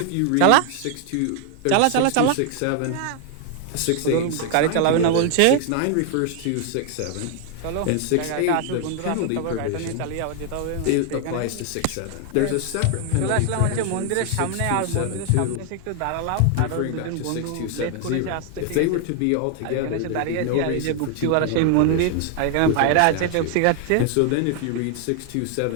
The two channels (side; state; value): both; different; correlation 0.00